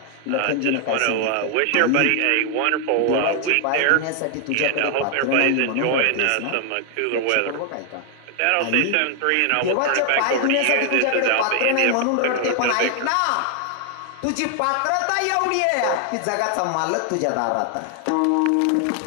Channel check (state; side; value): different; both; correlation 0.00